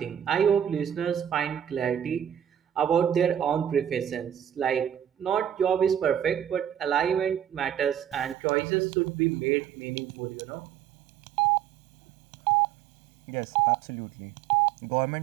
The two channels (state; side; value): drops out; left; at 8.3 s